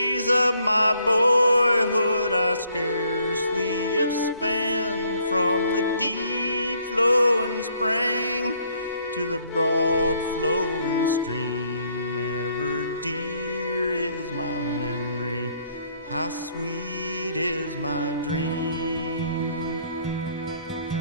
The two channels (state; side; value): inverted; both; correlation -0.67